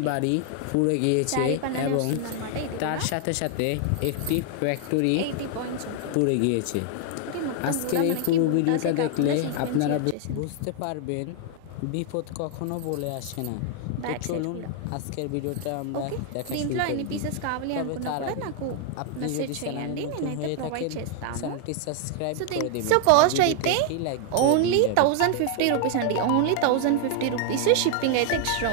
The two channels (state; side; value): different; both; correlation 0.00